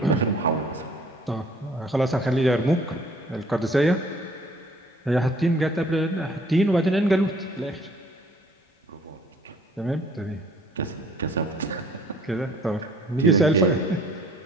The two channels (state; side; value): normal; both; correlation 0.56